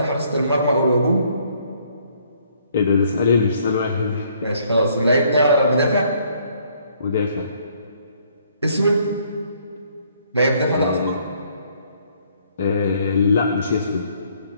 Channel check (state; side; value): inverted; both; correlation -0.65